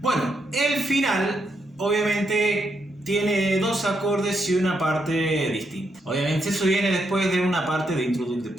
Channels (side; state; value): both; normal; correlation 0.80